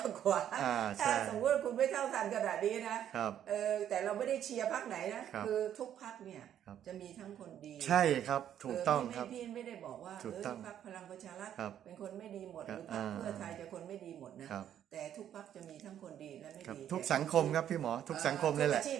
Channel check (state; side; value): quieter; left; 10.3 dB